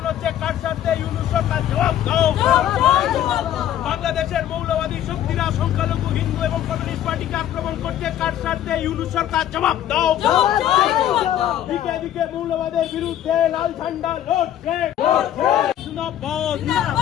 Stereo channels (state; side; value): quieter; right; 11.3 dB